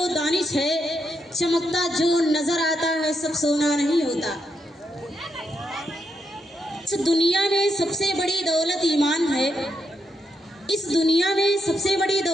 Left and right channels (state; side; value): normal; both; correlation 0.81